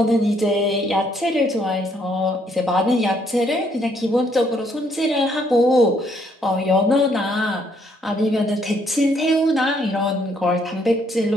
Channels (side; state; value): both; normal; correlation 0.69